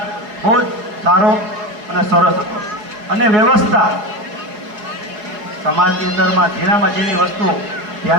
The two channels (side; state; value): left; late; 4.8 ms